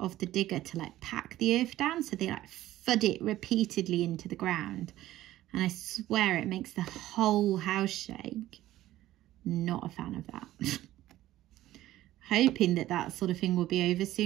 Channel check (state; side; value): quieter; left; 14.7 dB